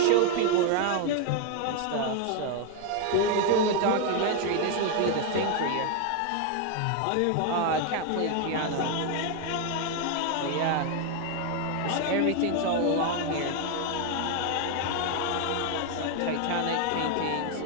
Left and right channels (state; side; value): different; both; correlation 0.01